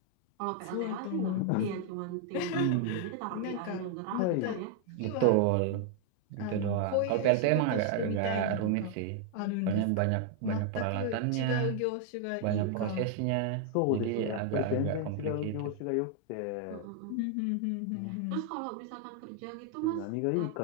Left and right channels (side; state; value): both; different; correlation 0.00